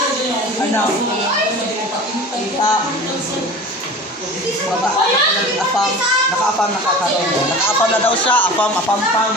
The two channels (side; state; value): both; normal; correlation 0.37